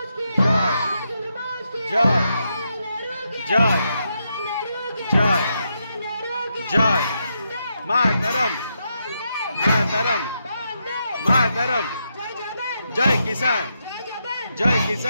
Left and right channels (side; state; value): both; inverted; correlation -0.82